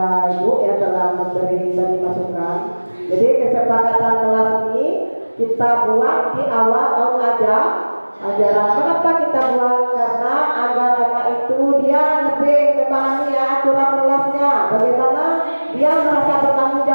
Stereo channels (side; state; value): both; inverted; correlation -1.00